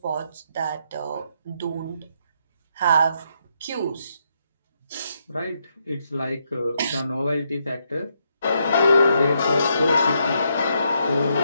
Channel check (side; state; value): both; inverted; correlation -0.77